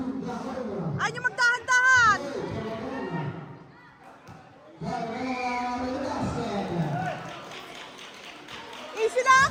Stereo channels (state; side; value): identical; both; correlation 1.00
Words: Ayaw nyo magdahan-dahan! Easy lang,